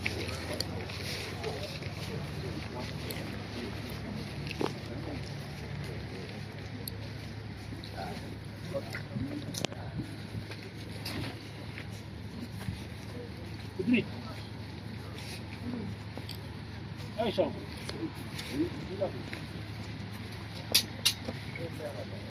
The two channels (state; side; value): identical; both; correlation 1.00